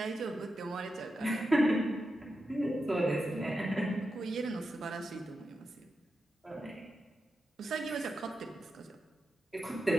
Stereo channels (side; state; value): both; normal; correlation 0.89